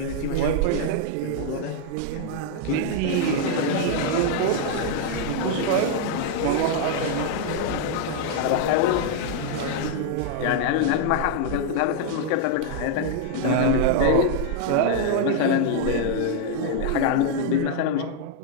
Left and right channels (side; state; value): both; different; correlation 0.00